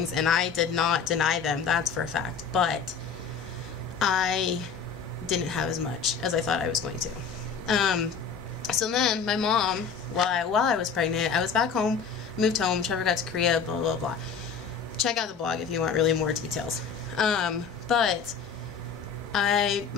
and I did not deny them, that's for a fact. But I didn't have as much as I thought I was going to. So then my mom, while I was pregnant, I was back home, moved home, Trevor got to Korea, blah, blah, blah. Check out the blog if you want really more details. But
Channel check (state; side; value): quieter; right; 6.1 dB